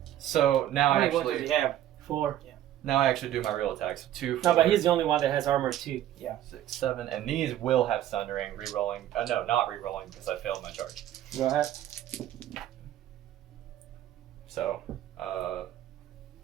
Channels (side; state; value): left; quieter; 12.4 dB